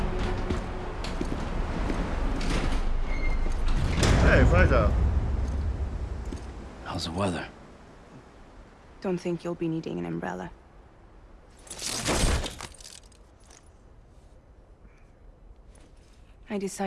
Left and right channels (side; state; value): both; identical; correlation 1.00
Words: Hey, Fragile. How's the weather? Don't think you'll be needing an umbrella. I